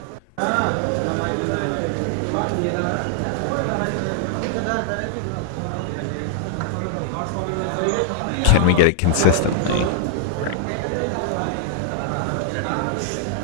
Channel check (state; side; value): different; both; correlation -0.01